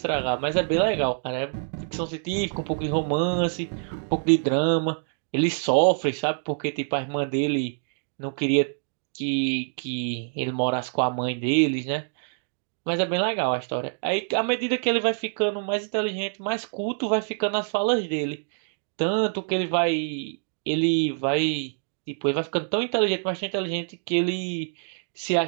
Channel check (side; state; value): left; silent; digital silence